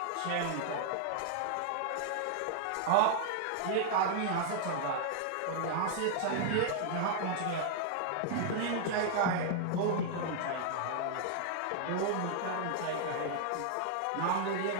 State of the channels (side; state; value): both; different; correlation -0.01